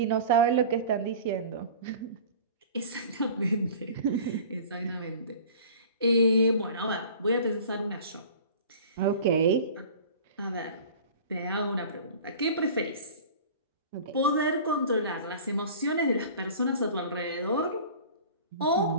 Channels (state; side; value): inverted; both; correlation -0.41